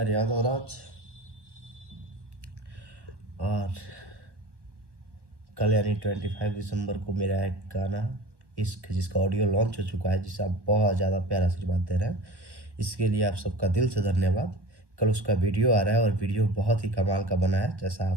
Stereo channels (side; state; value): left; late; 1.2 ms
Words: यादव राज। और कल यानी 25 दिसंबर को मेरा एक गाना इश्क, जिसका ऑडियो लॉन्च हो चुका है, जिसे आप बहुत ज़्यादा प्यार आशीर्वाद दे रहे हैं, इसके लिए आप सबका दिल से धन्यवाद। कल उसका वीडियो आ रहा है और वीडियो बहुत ही कमाल का बना है, जैसा